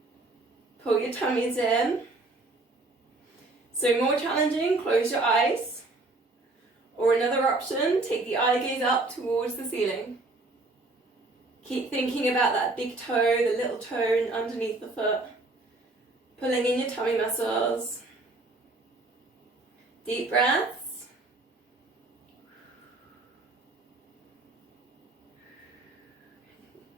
Pull your tummies in. So more challenging, close your eyes. Or another option, take the eye gaze up towards the ceiling. Keep thinking about that big toe, the little toe underneath the foot. Pulling in your tummy muscles. Deep breaths.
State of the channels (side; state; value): left; quieter; 3.1 dB